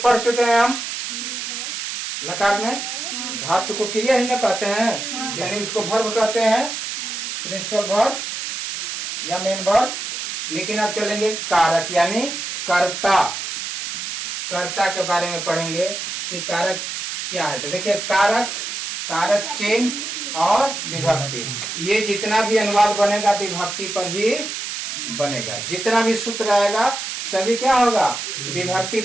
पढ़ चुके हैं हम लकार में। धातु को क्रिया ही न कहते हैं, यानी उसको वर्ब कहते हैं, प्रिंसिपल वर्ब या मेन वर्ब। लेकिन अब चलेंगे कारक यानी कर्ता। कर्ता के बारे में पढ़ेंगे कि कारक क्या है। तो देखिए कारक, कारक चिन्ह और विभक्ति, ये जितना भी अनुवाद बनेगा विभक्ति पर ही बनेगा। जितना भी सूत्र आएगा सभी क्या होगा, विभक्ति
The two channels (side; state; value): right; noise; hiss, 5 dB below the sound